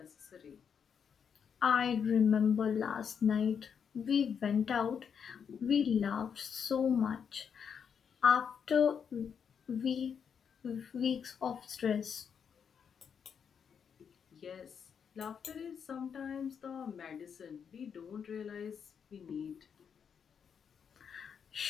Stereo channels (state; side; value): quieter; right; 7.2 dB